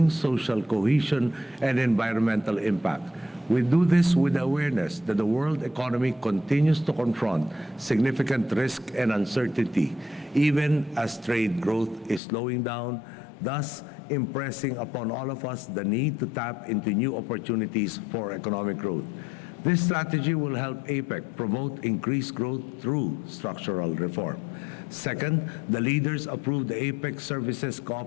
social cohesion, and environmental impact. We do this with the awareness that the world economy continues to confront significant risk and uncertainty, even as trade growth is slowing down, thus impressing upon all of us the need to tap into new opportunities for economic growth. This strategy will help APEC promote increased growth through structural reform. Second, the leaders approved the APEC Services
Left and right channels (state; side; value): drops out; right; at 12.2 s